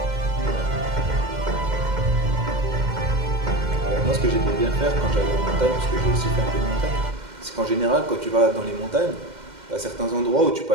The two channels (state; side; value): late; left; 2.1 ms